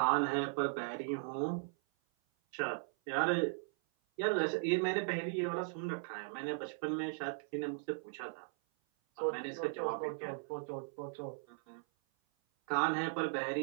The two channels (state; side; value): silent; left; 53 dB below the other